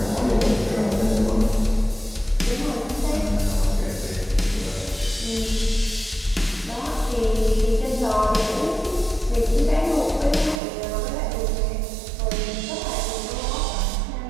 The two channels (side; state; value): left; drops out; at 10.6 s